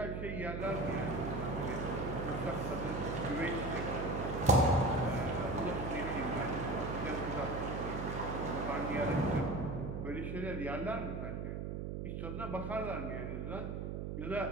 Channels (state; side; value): noise; right; hum, 4 dB below the sound